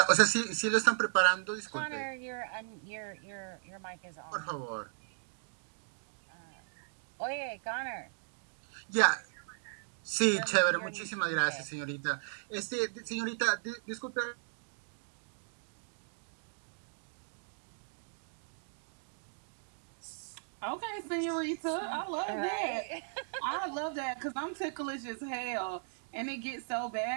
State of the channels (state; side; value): silent; left; digital silence